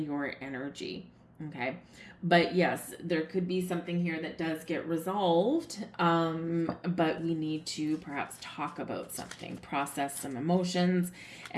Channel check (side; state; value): both; identical; correlation 1.00